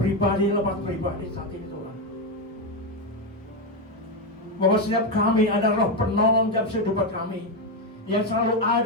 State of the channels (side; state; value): both; normal; correlation 0.09